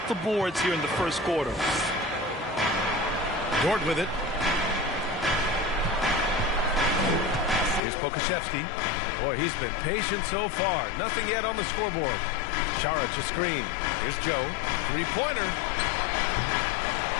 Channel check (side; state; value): right; drops out; at 7.8 s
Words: the boards here in the first quarter. Dort with it. Here's Pokashevsky. Boy, he's been patient so far. Nothing yet on the scoreboard. Šarić a screen. Here's Joe. 3-pointer.